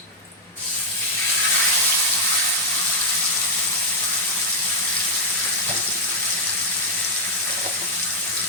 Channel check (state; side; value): normal; both; correlation -0.01